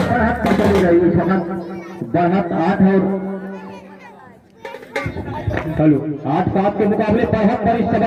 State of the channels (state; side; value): identical; both; correlation 1.00